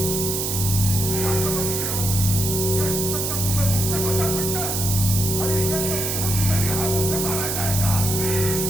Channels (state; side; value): noise; right; hiss, 1 dB below the sound